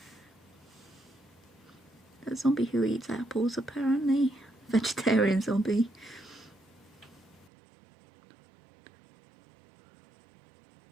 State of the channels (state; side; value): drops out; left; at 7.5 s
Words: A zombie who eats apples, apparently. Vegetarian zombie.